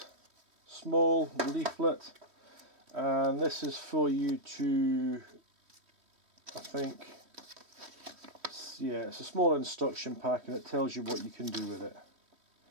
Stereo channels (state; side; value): late; left; 3.1 ms